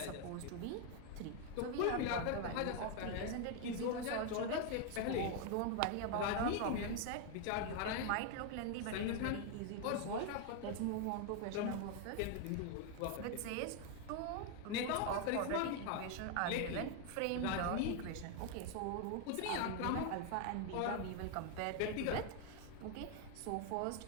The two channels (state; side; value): different; both; correlation 0.01